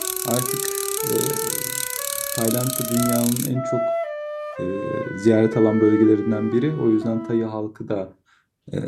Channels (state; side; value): identical; both; correlation 1.00